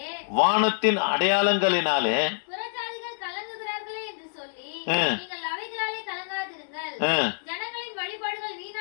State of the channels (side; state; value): right; silent; 60 dB below the other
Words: வானத்தின் அடையாளங்களினாலே புறஜாதிகள் கலங்குகிறார்களே என்று சொல்லி நீங்கள் அவைகளாலே கலங்காதிருங்கள். ஜனங்களின் வழிபாடுகள்